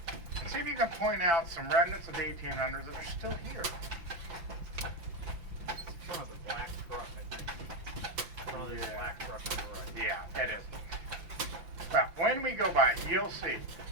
and see if you can point out some remnants of the 1800s that are still here. Some of the black truck, I think. Probably the Yeah. black truck on the right. Yeah, it is. Well, when we go by, you'll see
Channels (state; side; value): late; left; 5.9 ms